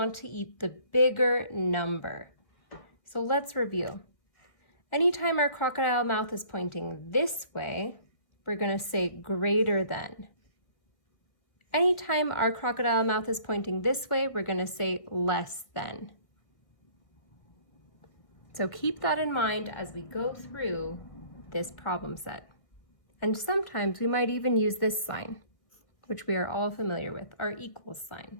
to eat the bigger number. So let's review. Anytime our crocodile mouth is pointing this way, we're going to say greater than. Anytime our crocodile mouth is pointing this way, we're going to say less than. So keep that in mind as we go through this problem set. And sometimes we might even use this sign, which we are all familiar with, our equals sign.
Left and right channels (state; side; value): late; right; 1.8 ms